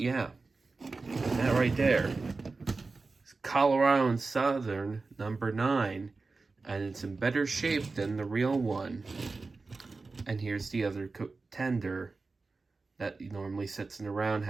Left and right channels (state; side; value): quieter; left; 3.9 dB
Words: that right there is Colorado and Southern number 9. And it's in better shape than the real one. And here's the other tender that normally sits in a